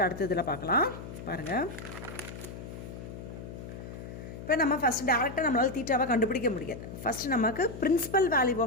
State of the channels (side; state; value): left; noise; hum, 11 dB below the sound